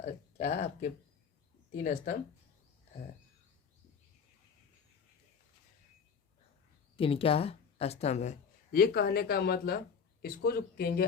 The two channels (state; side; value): quieter; right; 6.3 dB